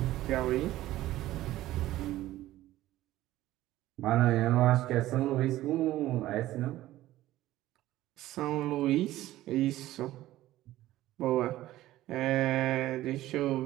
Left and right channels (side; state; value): left; quieter; 15.3 dB